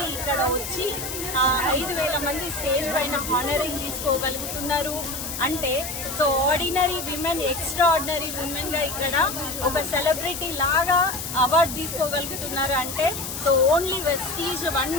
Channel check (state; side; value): noise; left; hiss, 6 dB below the sound